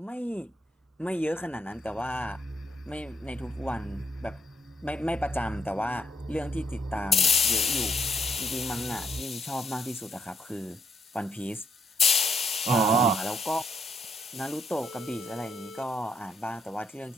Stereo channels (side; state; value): both; normal; correlation 0.74